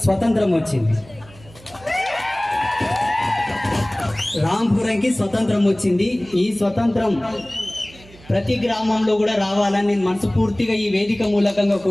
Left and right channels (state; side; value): noise; right; hum, 23 dB below the sound